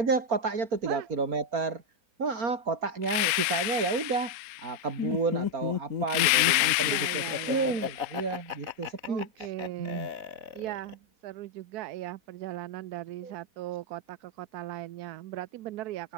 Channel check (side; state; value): left; late; 3.8 ms